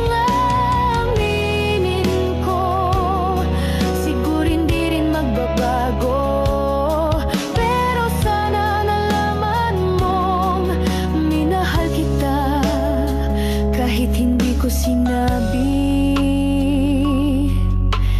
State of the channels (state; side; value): identical; both; correlation 1.00